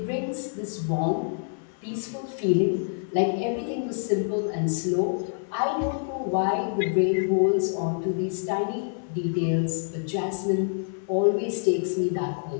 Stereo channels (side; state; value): right; silent; 60 dB below the other